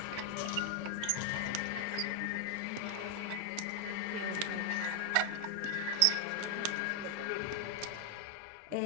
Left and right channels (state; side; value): different; both; correlation 0.00